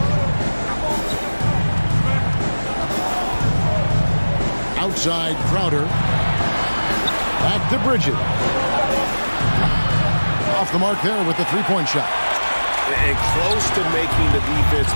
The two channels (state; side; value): inverted; both; correlation -1.00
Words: Outside Crowder. Back to Bridges. Off the mark there with the three-point shot. And close to making the defense